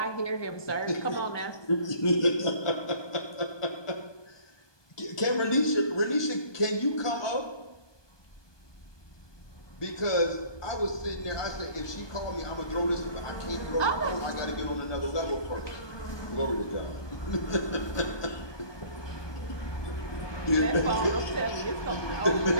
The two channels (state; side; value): late; right; 1.2 ms